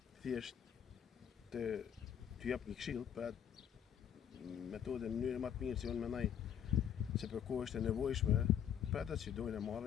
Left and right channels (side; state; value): right; quieter; 9.1 dB